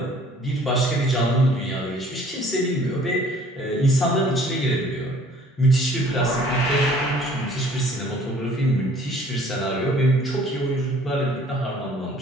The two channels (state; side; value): normal; both; correlation 0.54